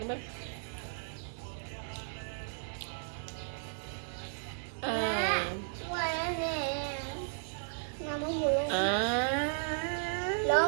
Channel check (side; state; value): left; silent; digital silence